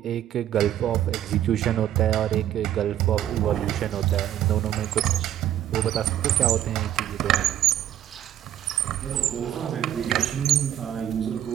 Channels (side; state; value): left; quieter; 11.6 dB